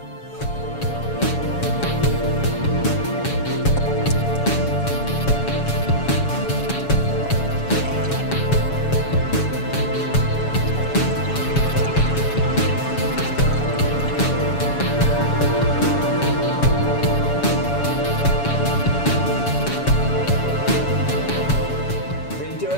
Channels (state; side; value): late; right; 7.1 ms